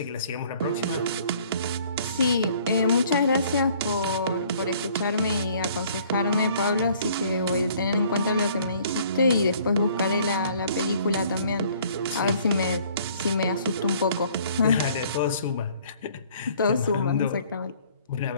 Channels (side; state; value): both; inverted; correlation -0.57